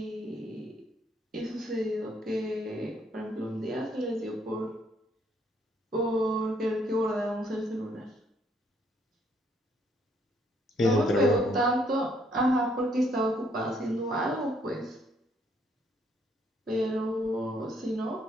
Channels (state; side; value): normal; both; correlation 0.69